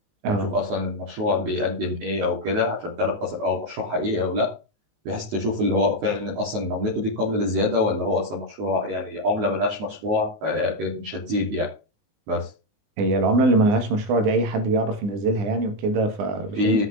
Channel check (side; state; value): left; late; 19 ms